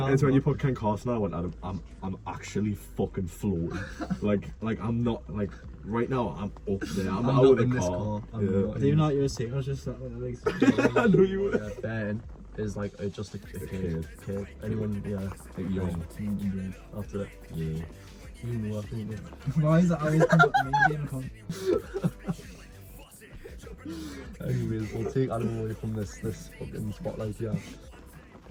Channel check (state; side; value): identical; both; correlation 1.00